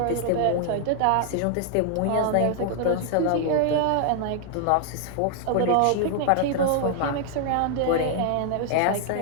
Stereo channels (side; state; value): both; different; correlation 0.00